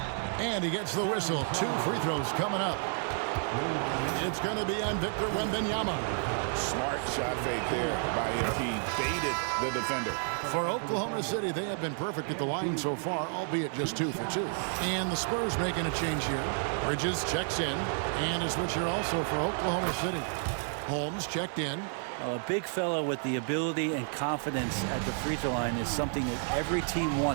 And he gets the whistle. 2 free throws coming up. It's going to be on Victor Wembanyama. Smart shot fake there by MP. Baited the defender. For Oklahoma City, they have been perfect at the line so far, albeit just 2 for 2. And the Spurs making a change here. Bridges checks in. And a switch here also for Oklahoma City. Holmes checked in. A big fella with the ability and confidence at the free throw line is something that every team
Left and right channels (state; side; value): silent; left; 57 dB below the other